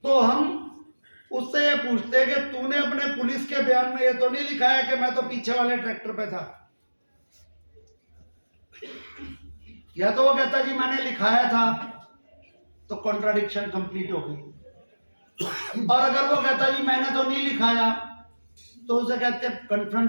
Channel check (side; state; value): both; inverted; correlation -1.00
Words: तो हम उससे ये पूछते कि तूने अपने पुलिस के बयान में ये तो नहीं लिखा है कि मैं तो पीछे वाले ट्रैक्टर पे था, या तो वो कहता जी मैंने लिखाया था, तो कॉन्ट्राडिक्शन कंप्लीट हो गई। और अगर वो कहता जी मैंने तो नहीं लिखाया तो उसे कहते हैं